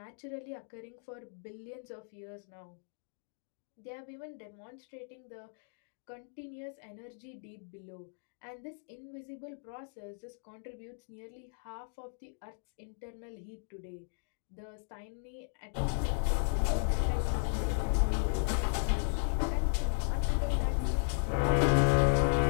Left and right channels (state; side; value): silent; right; digital silence